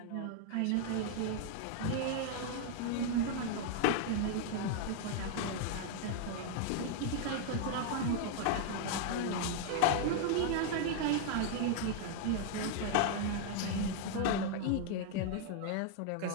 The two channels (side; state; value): both; different; correlation 0.00